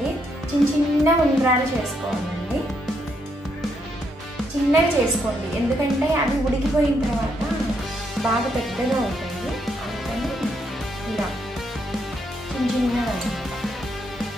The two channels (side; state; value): both; normal; correlation 0.76